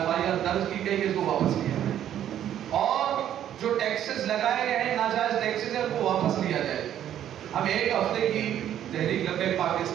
درج کی گئی ہے اس کو واپس لیا جائے, اور جو ٹیکسز لگائے گئے ہیں ناجائز ٹیکسز ہیں وہ واپس لیا جائے. ہم ایک ہفتے کی تحریک لبیک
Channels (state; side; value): quieter; left; 10.8 dB